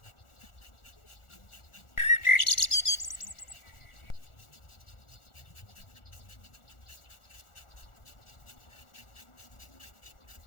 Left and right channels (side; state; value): right; late; 1.4 ms